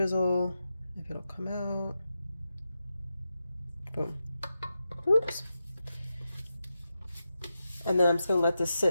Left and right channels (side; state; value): both; inverted; correlation -0.88